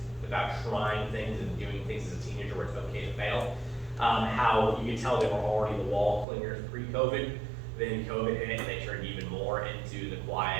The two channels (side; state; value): left; drops out; at 6.2 s